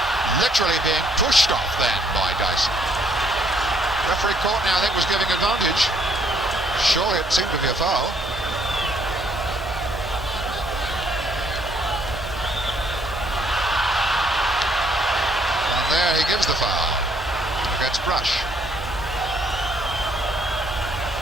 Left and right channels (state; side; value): normal; both; correlation 0.67